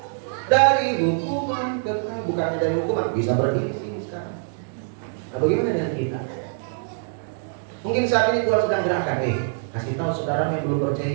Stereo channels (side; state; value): left; silent; digital silence